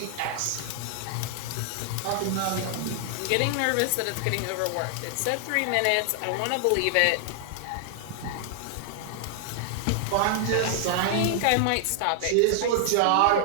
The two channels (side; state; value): both; different; correlation 0.00